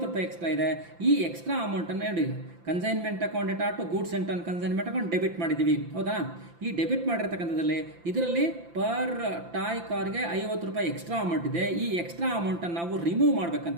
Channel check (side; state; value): left; late; 5.9 ms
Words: ರೂಪಾಯಿ ಎಕ್ಸ್ಟ್ರಾ ಇದೆ. ಈ ಎಕ್ಸ್ಟ್ರಾ ಅಮೌಂಟನ್ನು ನೋಡಿ consignment account data to goods sent on consignment account debit ಮಾಡಿದ್ದೀವಿ. ಹೌದಾ. ಈ ಡೆಬಿಟ್ ಮಾಡಿರ್ತಕ್ಕಂಥದ್ದಲ್ಲಿ ಇದರಲ್ಲಿ ಪರ್ ಟಾಯ್ ಕಾರ್ಗೆ 50 ರೂಪಾಯಿ ಎಕ್ಸ್ಟ್ರಾ ಅಮೌಂಟ್ ಇದೆ. ಈ ಎಕ್ಸ್ಟ್ರಾ ಅಮೌಂಟನ್ನು ನಾವು ರಿಮೂವ್